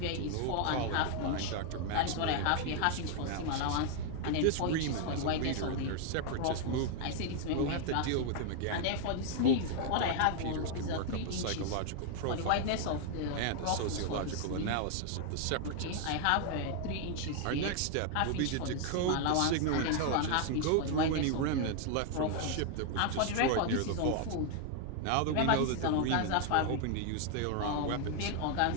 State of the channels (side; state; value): both; different; correlation 0.00